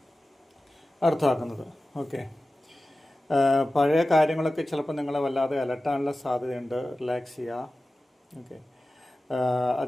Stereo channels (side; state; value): both; normal; correlation 0.95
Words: അർത്ഥമാക്കുന്നത്. ഓക്കെ, പഴയ കാര്യങ്ങളൊക്കെ ചിലപ്പോൾ നിങ്ങളെ വല്ലാതെ അലട്ടാനുള്ള സാധ്യതയുണ്ട്. റിലാക്സ് ചെയ്യുക. ഓക്കെ,